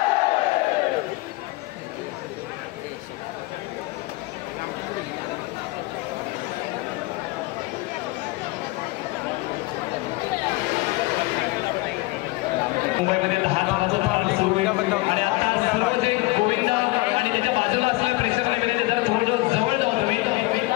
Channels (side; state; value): right; quieter; 22.1 dB